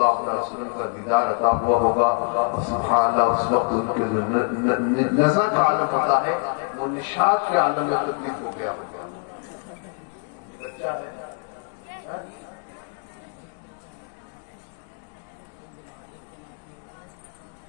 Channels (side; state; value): right; quieter; 38.9 dB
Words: علیہ وسلم کا دیدار عطا ہوا ہوگا، اور سبحان اللہ اس وقت ان کے جو نظر کا عالم ہوتا ہے وہ نشاط کے عالم میں تبدیل ہو گیا ہوگا۔